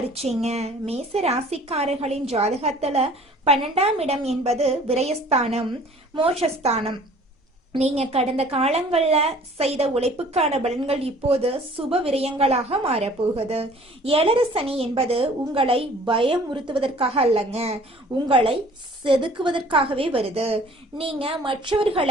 மேச ராசிக்காரர்களின் ஜாதகத்துல 12ஆம் இடம் என்பது விரயஸ்தானம், மோட்சஸ்தானம். நீங்க கடந்த காலங்கள்ல செய்த உழைப்புக்கான பலன்கள் இப்போது சுப விரயங்களாக மாறப்போகுது. ஏழரை சனி என்பது உங்களை பயமுறுத்துவதற்காக அல்லங்க, உங்களை செதுக்குவதற்காகவே வருது. நீங்க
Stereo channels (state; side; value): normal; both; correlation 0.51